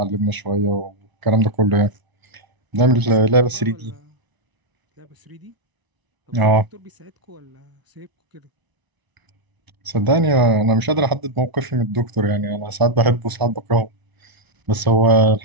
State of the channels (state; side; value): late; left; 1.0 ms